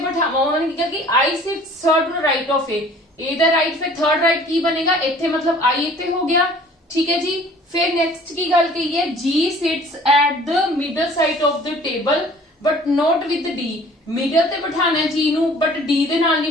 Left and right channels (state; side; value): normal; both; correlation 0.50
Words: बिठावा, उन्होंने क्या कि I sits third to the right of A दा राइट, फिर थर्ड राइट की बनेगा इथे, मतलब आई इथे हो गया, ठीक है जी। फिर नेक्स्ट की गल कही है G sits at the middle side of the table but not with D, middle ते बिठाना है जी नू बट डी दे नाल नहीं